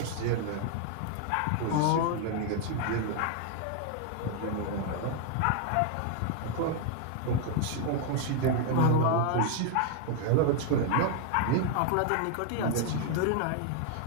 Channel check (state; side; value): different; both; correlation 0.00